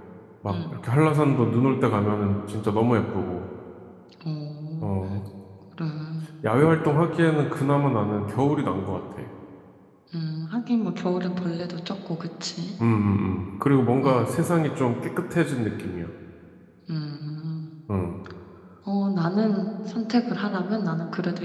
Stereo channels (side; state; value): both; identical; correlation 1.00